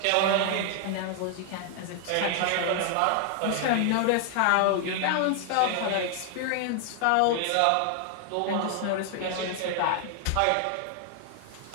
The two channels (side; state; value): both; different; correlation 0.00